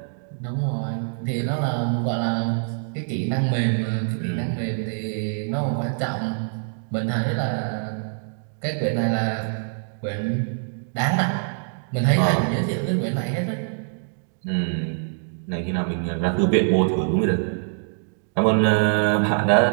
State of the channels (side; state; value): left; silent; digital silence